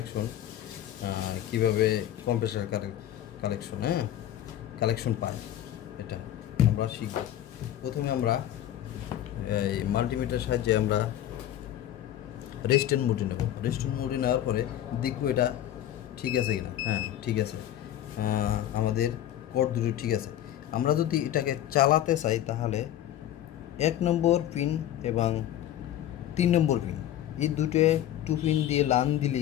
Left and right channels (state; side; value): quieter; right; 11.9 dB